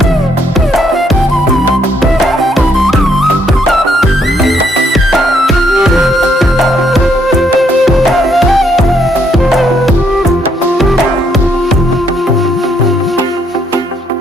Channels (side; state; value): both; normal; correlation 0.71